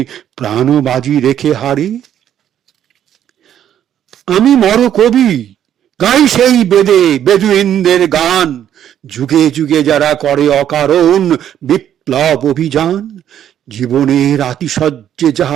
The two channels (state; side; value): quieter; left; 10.3 dB